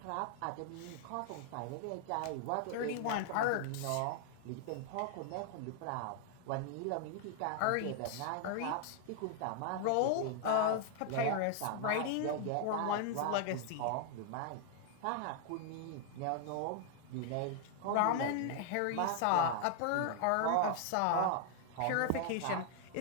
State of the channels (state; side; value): different; both; correlation 0.00